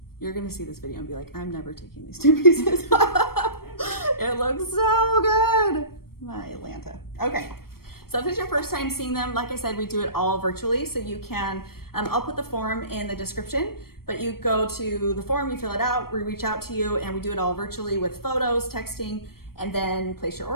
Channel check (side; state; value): right; late; 0.94 ms